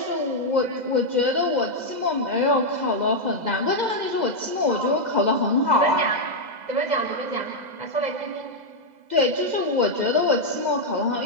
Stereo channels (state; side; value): late; left; 2.0 ms